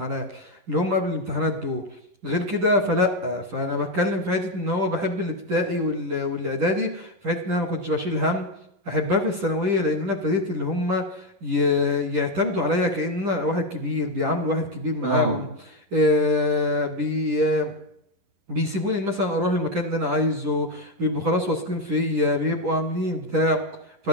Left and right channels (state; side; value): late; left; 10 ms